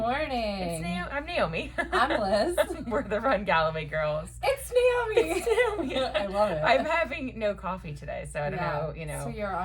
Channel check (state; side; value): identical; both; correlation 1.00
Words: I'm Naomi. I'm Liz. We're the Run Galloway girls. It's Naomi. It's Naomi. I love it. I'm having no coffee today, so I don't know, So you're